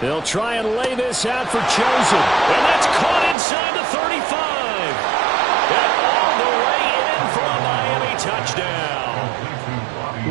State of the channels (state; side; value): drops out; left; at 3.4 s